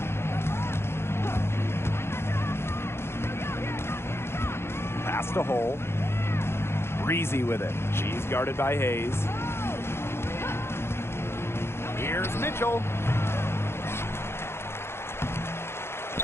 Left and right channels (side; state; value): right; late; 0.12 ms